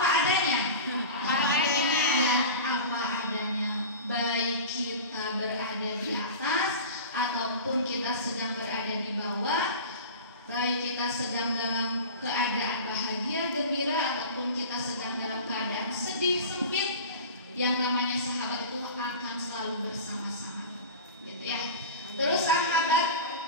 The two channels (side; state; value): both; inverted; correlation -0.33